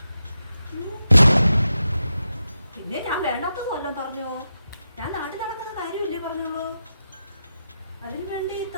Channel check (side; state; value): both; inverted; correlation -0.88